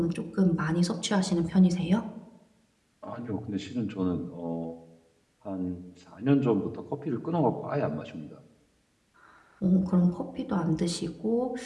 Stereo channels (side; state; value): both; identical; correlation 1.00